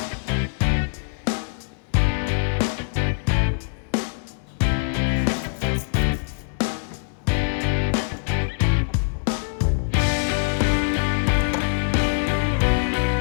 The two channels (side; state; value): right; silent; digital silence